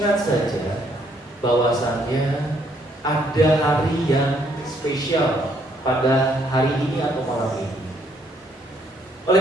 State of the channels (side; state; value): both; normal; correlation 0.69